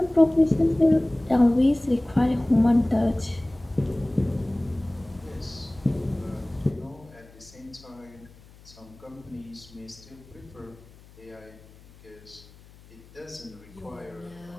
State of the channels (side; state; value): left; noise; hum, 23 dB below the sound